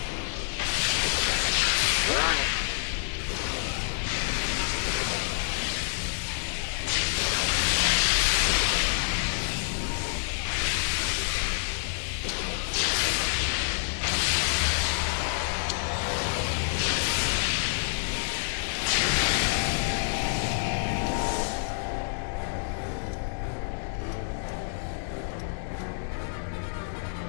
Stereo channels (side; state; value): right; silent; digital silence